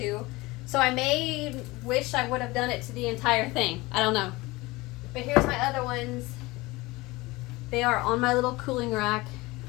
So I may wish I would have done it to the entire thing. I don't know. But here's my other ones. They are on my little cooling rack.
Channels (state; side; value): quieter; right; 21.6 dB